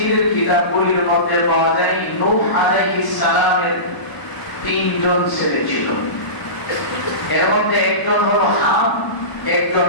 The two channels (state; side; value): late; right; 1.0 ms